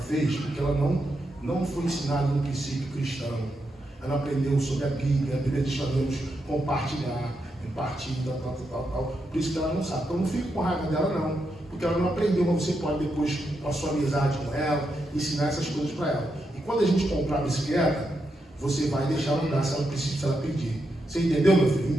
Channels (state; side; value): normal; both; correlation 0.84